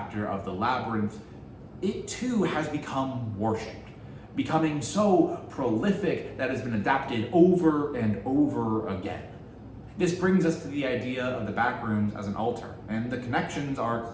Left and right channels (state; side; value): identical; both; correlation 1.00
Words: of the labyrinth, it too has become worshipped, becoming so prolific that it has been adapted over and over again. This brings us to the idea of the Backrooms as an altar, and the connections are